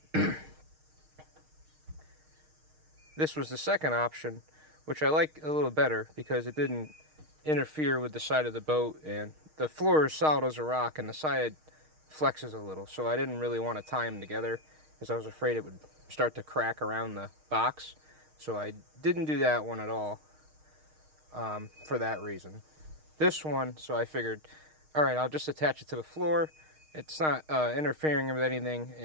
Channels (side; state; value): left; late; 6.4 ms